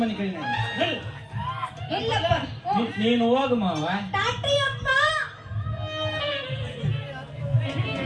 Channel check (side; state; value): both; identical; correlation 1.00